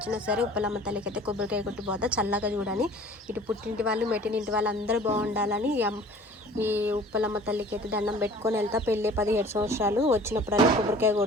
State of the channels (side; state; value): both; normal; correlation 0.47